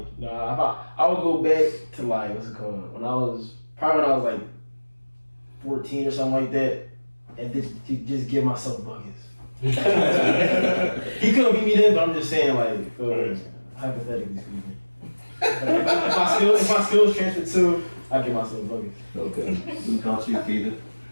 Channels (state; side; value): inverted; both; correlation -1.00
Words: would go back to like, what's it called? When I was like 14 or something like that, and just give myself buckets. He couldn't beat me then, but I'm just saying, like, hypothetically speaking. If my skills transfer too, I give myself buckets. Okay. What about you, Peter?